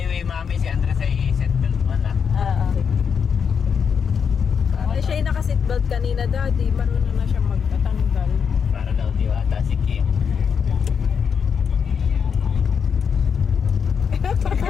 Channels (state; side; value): quieter; right; 6.7 dB